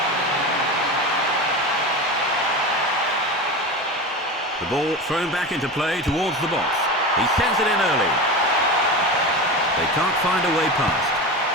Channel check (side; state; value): both; normal; correlation 0.26